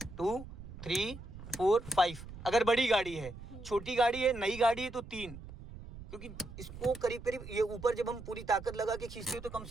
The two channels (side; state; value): right; noise; rumble, 13 dB below the sound